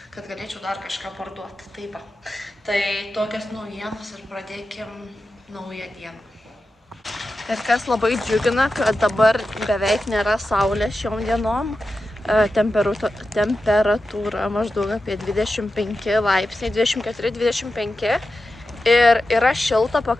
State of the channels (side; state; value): both; normal; correlation 0.92